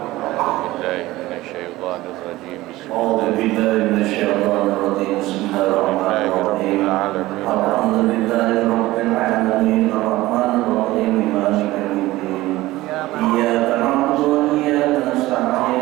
بالله من الشيطان الرجيم بسم الله الرحمن الرحيم الحمد لله رب العالمين الرحمن الرحيم مالك يوم الدين إياك نعبد وإياك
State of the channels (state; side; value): quieter; left; 17.8 dB